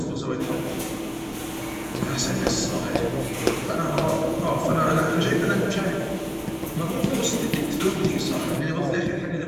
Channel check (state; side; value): identical; both; correlation 1.00